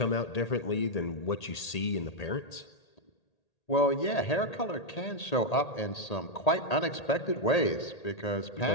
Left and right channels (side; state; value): right; late; 1.8 ms